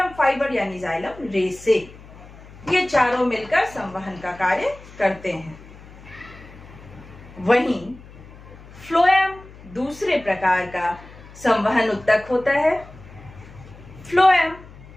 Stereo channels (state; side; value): noise; left; hum, 19 dB below the sound